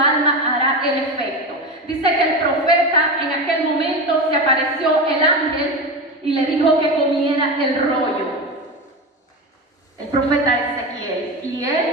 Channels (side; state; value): both; normal; correlation 0.22